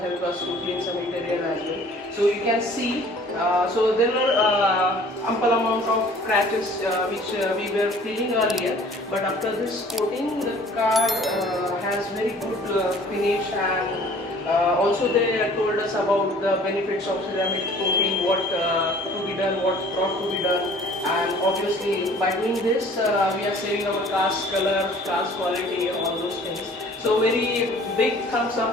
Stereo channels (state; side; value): normal; both; correlation 0.51